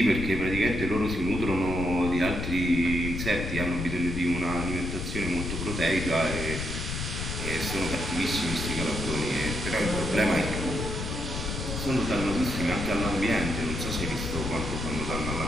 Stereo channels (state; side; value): noise; left; rumble, 4 dB below the sound